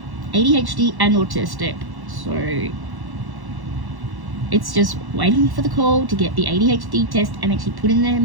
ADHD and autistic. So it's just waiting for the call to get the ADHD test and actually put in their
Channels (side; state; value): left; late; 1.1 ms